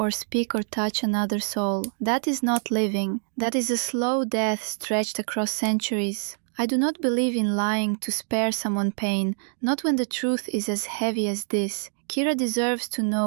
speak or touch another soul. That is not living. That is a slow death stretched across centuries. I do not believe in lying to spare someone pain, not when the truth is as heavy as this. Kira deserves to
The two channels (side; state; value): left; silent; 61 dB below the other